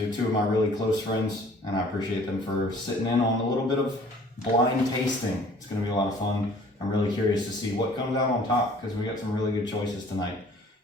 are two of my really close friends, and I appreciate them for sitting in on a little bit of blind tasting. It's going to be a lot of fun. I'm really curious to see what comes out on top because we got some really good choices tonight.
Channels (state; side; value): normal; both; correlation 0.53